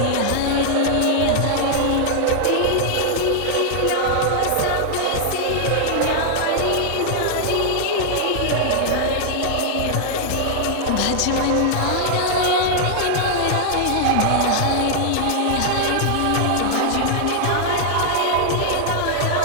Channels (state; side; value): different; both; correlation -0.01